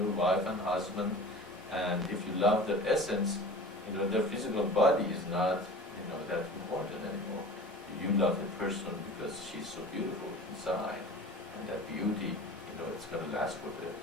wife and husband, and if you love their essence, their physical body is not that important anymore. You love the person because she's so beautiful inside, and that beauty, it's going to last for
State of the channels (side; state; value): both; normal; correlation 0.39